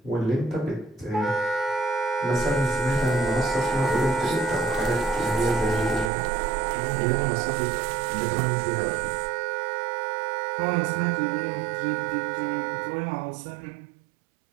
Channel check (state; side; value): drops out; left; at 6.1 s